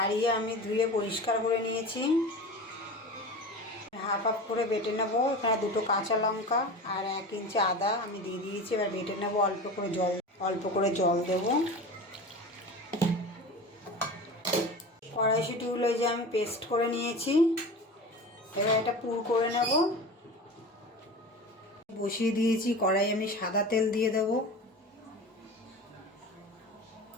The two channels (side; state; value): both; normal; correlation 0.32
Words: আমি ধুয়ে পরিষ্কার করে নিয়েছি। হাফ হাফ করে বেটে নেব। এখানে 2টো কাঁচা লঙ্কা আর 1 ইঞ্চি আদা আমি দিয়ে দিয়েছি। এবার বেটে নেব। অল্প করে জল দেব। কড়াইশুঁটিগুলো এই যে আমি পেস্ট করে নিয়েছি। এবার এটা পুর করে নেব। বসিয়ে দিয়েছি কড়াই, আমি সাদা তেল দিয়ে দেব।